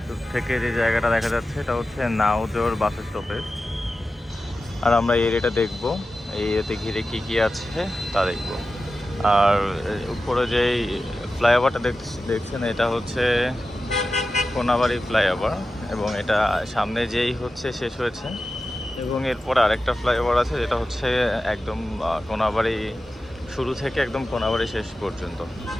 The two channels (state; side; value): normal; both; correlation 0.93